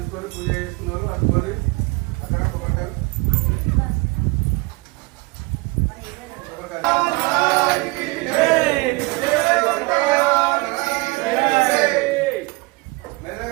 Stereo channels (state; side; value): quieter; left; 25.6 dB